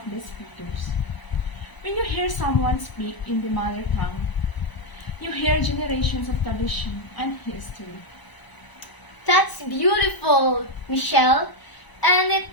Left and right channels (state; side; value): late; right; 1.0 ms